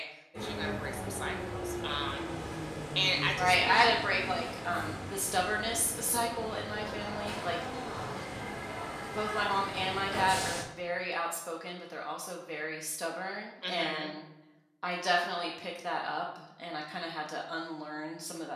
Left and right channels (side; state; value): both; identical; correlation 1.00